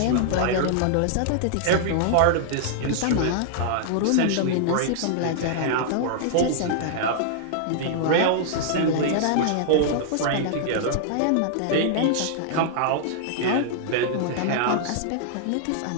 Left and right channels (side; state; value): both; different; correlation -0.01